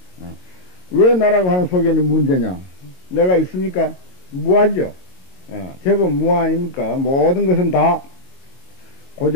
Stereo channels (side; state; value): right; late; 22 ms